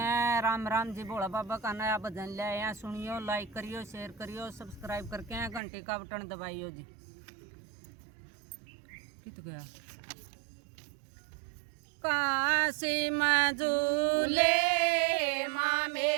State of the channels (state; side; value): drops out; left; at 5.6 s